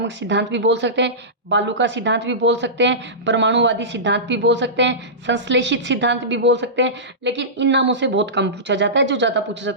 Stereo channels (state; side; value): normal; both; correlation -0.18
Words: सिद्धांत भी बोल सकते हैं, बालू का सिद्धांत भी बोल सकते हैं, परमाणुवादी सिद्धांत भी बोल सकते हैं, संश्लेषित सिद्धांत भी बोल सकते हैं, लेकिन इन नामों से बहुत कम पूछा जाता है, जो ज़्यादा पूछा